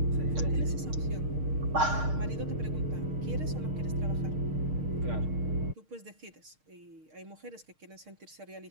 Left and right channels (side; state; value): left; late; 6.5 ms